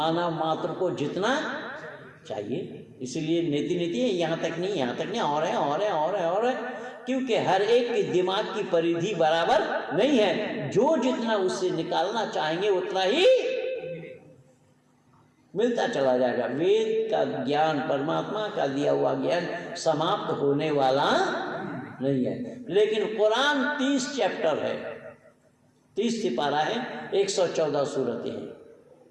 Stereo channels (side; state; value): both; identical; correlation 1.00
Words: मात्र को जितना चाहिए। इसलिए नीति नीति है, यहाँ तक नहीं, यहाँ तक नहीं, और है और है और है और है, क्योंकि हर एक के दिमाग की परिधि बराबर नहीं है। जो जितना उससे निकालना चाहेंगे उतना ही मिलता चला जाएगा। वेद का ज्ञान, परमात्मा का दिया हुआ ज्ञान समाप्त होने वाला नहीं है। लेकिन कुरान 30 चैप्टर है, 30 सिपारा है, 114 सूरतें हैं।